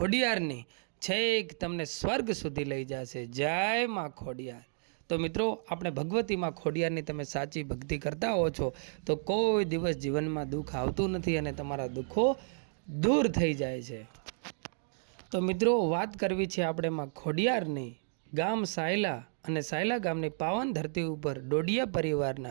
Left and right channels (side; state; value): left; silent; digital silence